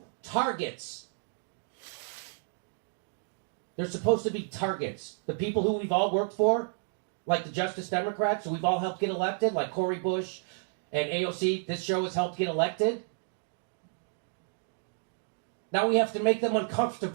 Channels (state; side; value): silent; left; digital silence